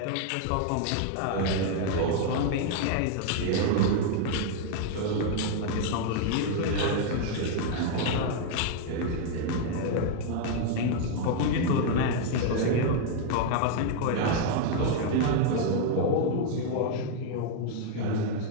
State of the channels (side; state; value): both; different; correlation 0.00